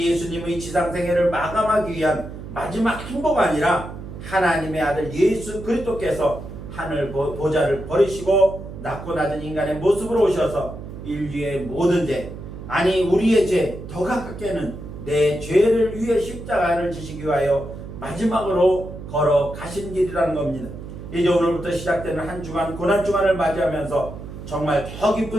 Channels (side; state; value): right; noise; hum, 11 dB below the sound